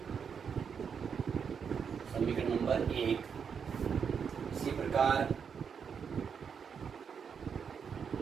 समीकरण नंबर 1। इसी प्रकार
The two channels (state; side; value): quieter; left; 6.7 dB